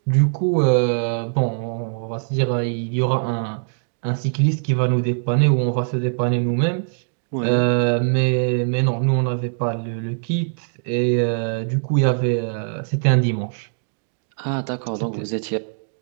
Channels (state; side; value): silent; left; digital silence